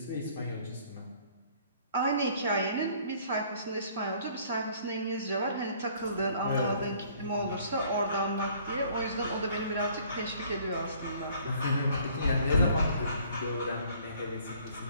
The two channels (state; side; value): inverted; both; correlation -0.57